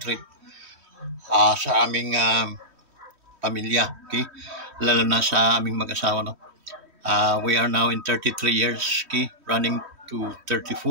sa aming pamilya, okay? Lalo na sa aming mag-asawa, no? We are now in 33 years, okay? Running to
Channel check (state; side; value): late; left; 3.1 ms